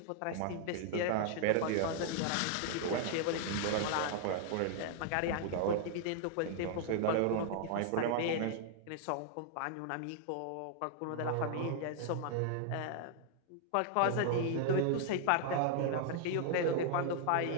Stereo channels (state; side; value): different; both; correlation -0.01